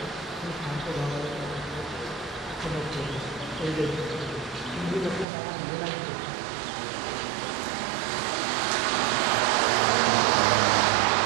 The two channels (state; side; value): drops out; left; at 5.2 s